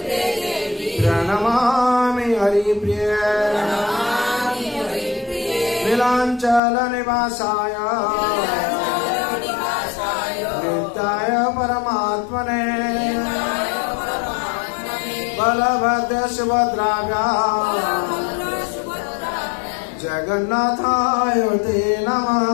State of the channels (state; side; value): drops out; right; at 6.6 s